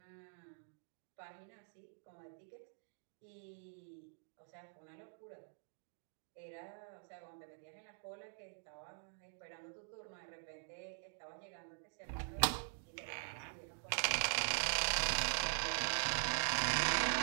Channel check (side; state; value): left; silent; digital silence